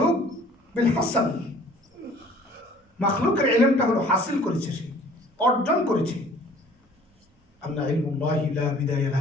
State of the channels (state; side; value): normal; both; correlation 0.52